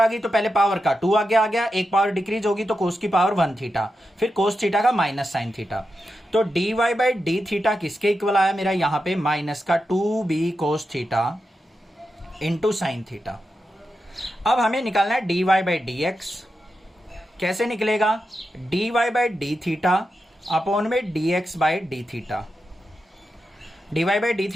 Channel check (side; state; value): both; normal; correlation 0.89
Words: गई तो पहले पावर का 2 आगे आ गया, एक पावर डिक्रीज होगी तो कोस की पावर 1 थीटा, फिर कोस थीटा का माइनस साइन थीटा। तो dy बाई डी थीटा किसके इक्वल आया मेरा, यहां पे माइनस का 2b cos theta into sine theta. अब हमें निकालना है dy बाई डी एक्स। कैसे निकलेगा, dy by d theta upon में dx by d theta. dy by d